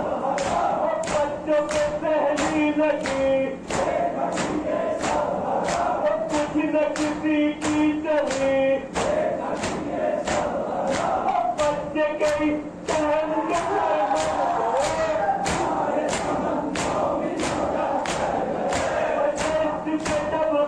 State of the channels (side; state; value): both; identical; correlation 1.00